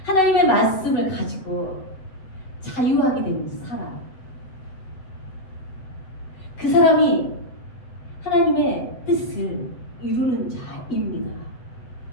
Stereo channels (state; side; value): late; right; 7.9 ms